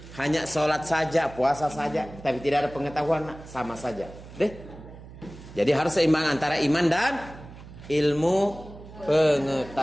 hanya sholat saja, puasa saja, tapi tidak ada pengetahuan, sama saja. Jadi harus seimbang antara iman dan ilmu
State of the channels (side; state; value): right; noise; hum, 17 dB below the sound